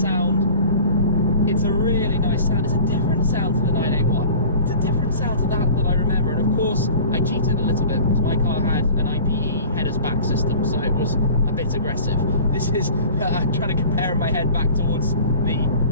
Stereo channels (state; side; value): inverted; both; correlation -0.43